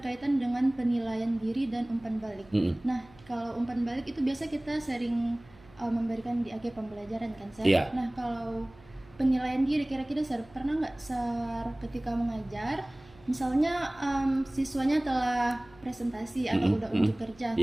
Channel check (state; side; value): noise; right; hum, 25 dB below the sound